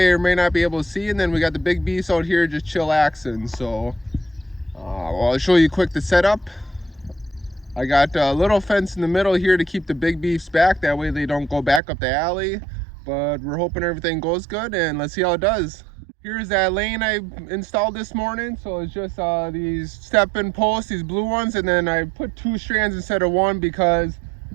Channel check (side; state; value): left; drops out; at 11.8 s